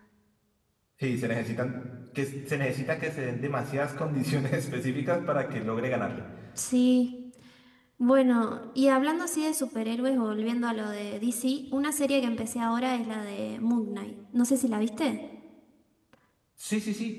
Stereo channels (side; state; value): both; identical; correlation 1.00